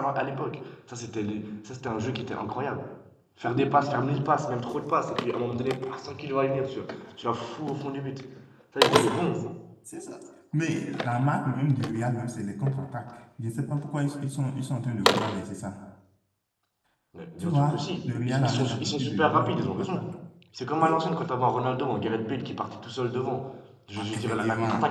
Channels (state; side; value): identical; both; correlation 1.00